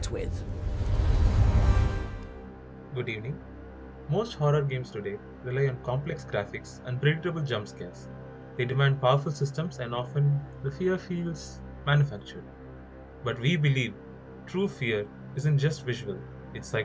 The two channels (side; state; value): both; identical; correlation 1.00